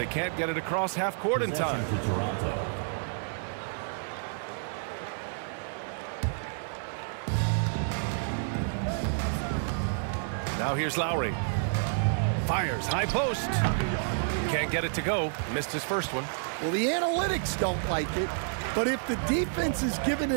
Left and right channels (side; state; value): left; silent; digital silence